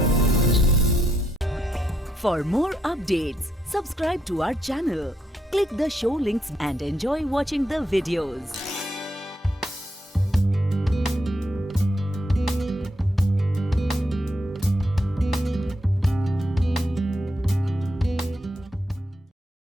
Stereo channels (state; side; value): normal; both; correlation 0.79